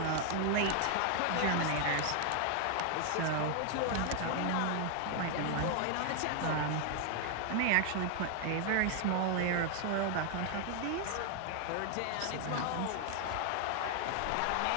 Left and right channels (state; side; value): different; both; correlation 0.00